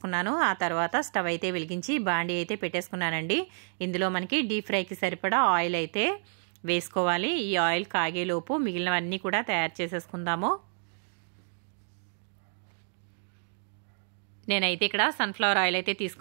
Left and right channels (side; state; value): left; silent; digital silence